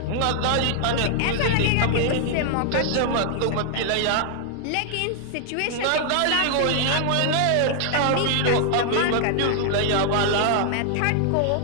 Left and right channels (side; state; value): both; different; correlation 0.00